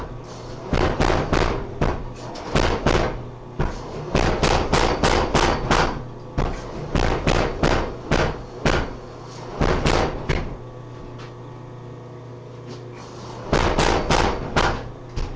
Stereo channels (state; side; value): identical; both; correlation 1.00